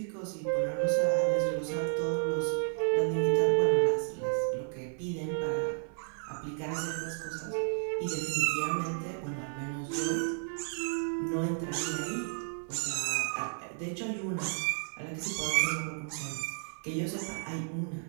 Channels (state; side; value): silent; left; 56 dB below the other